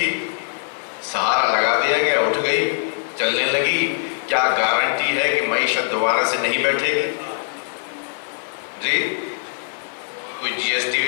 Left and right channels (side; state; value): right; silent; digital silence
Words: سہارا لگا دیا گیا، اٹھ گئی، چلنے لگی، کیا گارنٹی ہے کہ معیشت دوبارہ سے نہیں بیٹھے گی؟ جی کوئی جی ایس